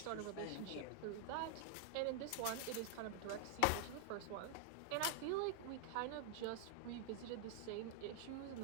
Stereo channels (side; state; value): both; different; correlation 0.00